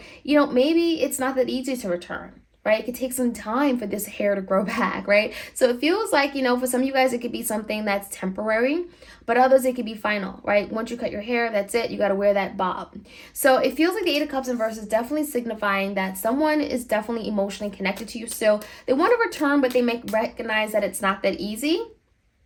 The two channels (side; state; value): both; identical; correlation 1.00